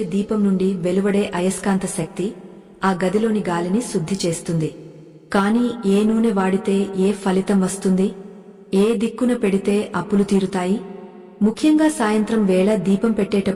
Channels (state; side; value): identical; both; correlation 1.00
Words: దీపం నుండి వెలువడే అయస్కాంత శక్తి ఆ గదిలోని గాలిని శుద్ధి చేస్తుంది. కాని ఏ నూనె వాడితే ఏ ఫలితం వస్తుంది? ఏ దిక్కున పెడితే అప్పులు తీరుతాయి? ముఖ్యంగా సాయంత్రం వేళ దీపం